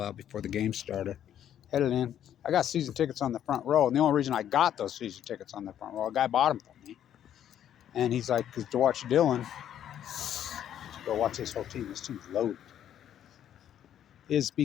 out before the game started. Headed in. I got season tickets on the front row, and the only reason I got those season tickets on the front row, a guy bought them for me. And he's like, to watch Dylan, to go watch this whole team. This team's loaded. Is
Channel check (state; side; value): quieter; right; 10.4 dB